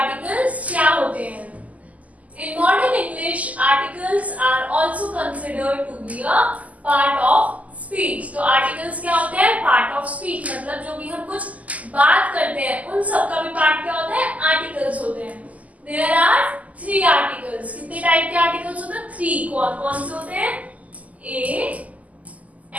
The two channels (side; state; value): left; late; 0.074 ms